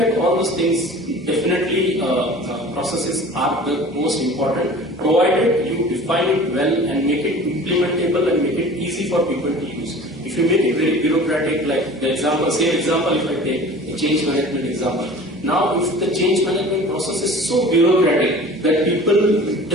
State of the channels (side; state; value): both; normal; correlation 0.42